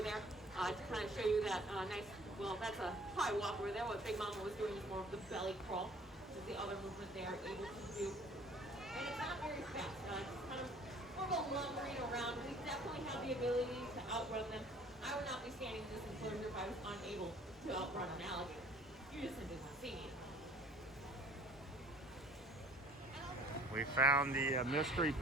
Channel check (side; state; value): both; normal; correlation 0.52